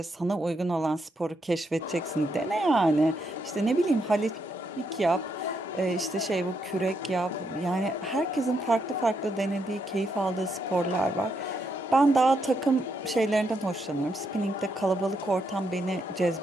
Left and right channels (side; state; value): both; normal; correlation 0.78